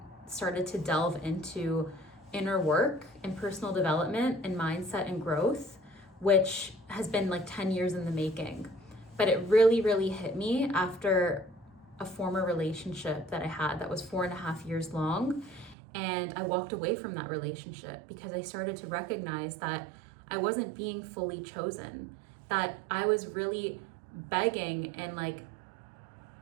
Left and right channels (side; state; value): left; drops out; at 15.8 s